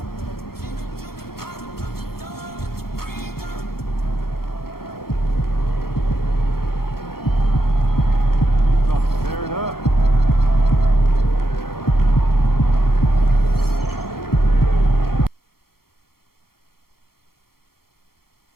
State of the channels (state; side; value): late; right; 0.94 ms